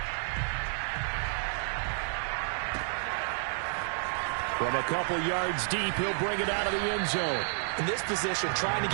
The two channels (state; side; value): silent; left; digital silence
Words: From a couple yards deep, he'll bring it out of the end zone. In this position, trying to